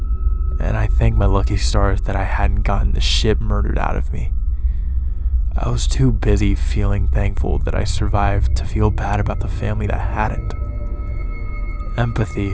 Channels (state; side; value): identical; both; correlation 1.00